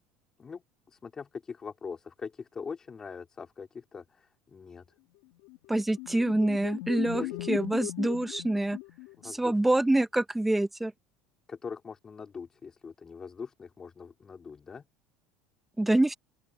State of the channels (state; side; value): normal; both; correlation 0.94